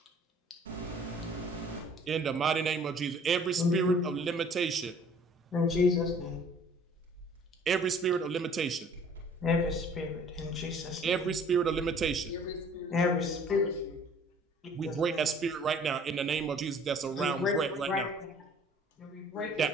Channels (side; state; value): both; normal; correlation 0.53